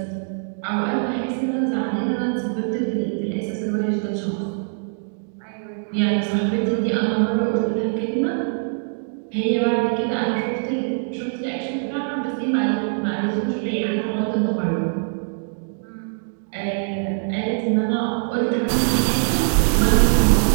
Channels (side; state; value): left; silent; digital silence